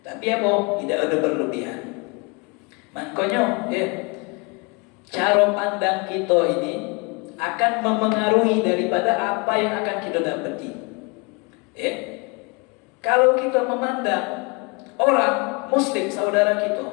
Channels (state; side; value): quieter; right; 30.5 dB